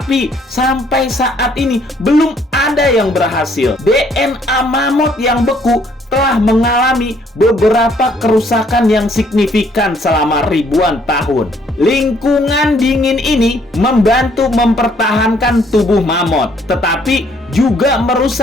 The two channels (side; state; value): both; normal; correlation 0.65